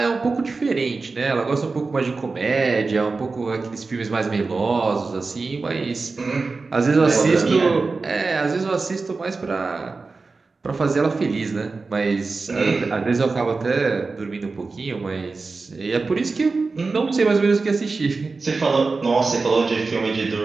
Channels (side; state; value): left; quieter; 4.0 dB